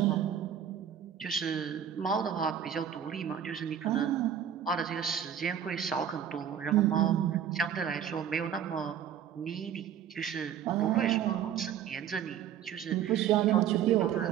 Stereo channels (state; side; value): quieter; left; 9.2 dB